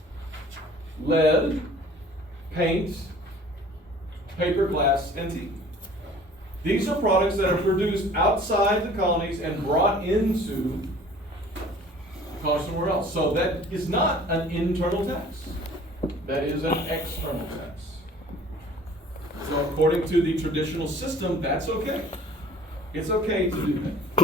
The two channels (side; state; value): both; normal; correlation 0.50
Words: Lead, paint, paper, glass, and tea. These are products that are produced outside the colonies and brought into the colonies somewhere else. So that is not an internal tax. That is an external tax. according to the traditional system, that's okay. It's okay to do